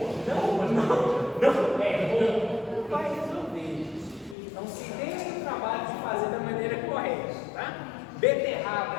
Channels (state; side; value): drops out; right; at 4.4 s